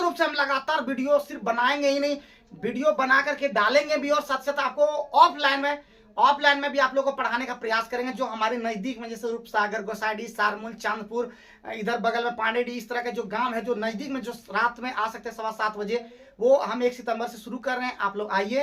रूप से हम लगातार वीडियो सिर्फ बनाएंगे ही नहीं, वीडियो बना करके डालेंगे भी। और साथ साथ आपको ऑफलाइन में भी आप लोगों को पढ़ाने का प्रयास करेंगे। जो हमारे नजदीक में जैसे रूपसागर, गोसाइडी, सारमूल, चांदपुर, इधर बगल में पांडेडी, इस तरह के जो गांव है जो नजदीक में, जो रात में आ सकते हैं 7:15 बजे, वो हम 1 सितंबर से शुरू कर रहे हैं। आप लोग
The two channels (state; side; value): identical; both; correlation 1.00